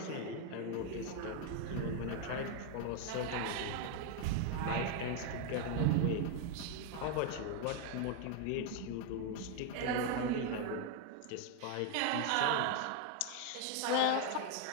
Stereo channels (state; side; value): different; both; correlation 0.01